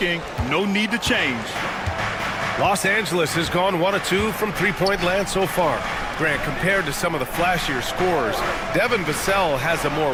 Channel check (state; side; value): identical; both; correlation 1.00